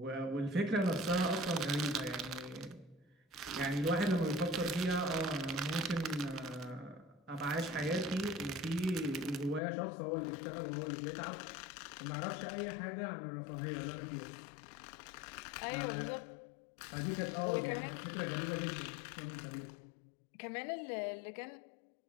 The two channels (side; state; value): right; drops out; at 9.6 s